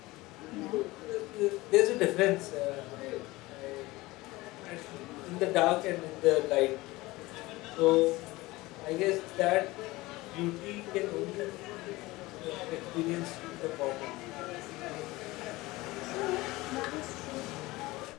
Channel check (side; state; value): right; quieter; 20.2 dB